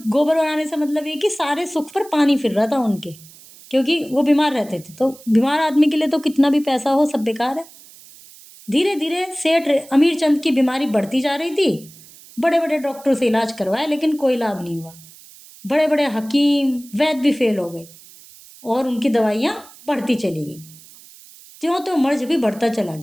गोबर बनाने से मतलब ये कि सारे सुख पर पानी फिर रहा था उनके, क्योंकि वो बीमार रहते थे। तो बीमार आदमी के लिए तो कितना भी पैसा हो सब बेकार है। धीरे धीरे सेठ अमीरचंद की बीमारी बढ़ती जा रही थी। बड़े बड़े डॉक्टरों से इलाज करवाया, लेकिन कोई लाभ नहीं हुआ। बड़े बड़े हकीम वैद्य भी फेल हो गए, और उनकी दवाइयाँ बढ़ती चली गई। त्यों तो मर्ज भी बढ़ता चला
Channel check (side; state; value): right; noise; hiss, 22 dB below the sound